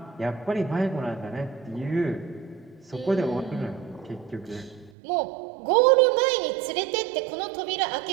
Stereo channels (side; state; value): left; drops out; at 4.9 s